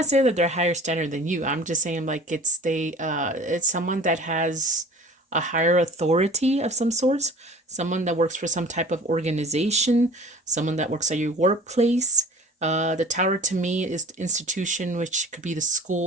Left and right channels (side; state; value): both; normal; correlation 0.44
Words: saying that they're higher standard than you. I'm just saying like it's someone that has a higher authority of some sorts, someone that works for some type of organization, someone that works at your workplace. The tower to me is the institution, which could be the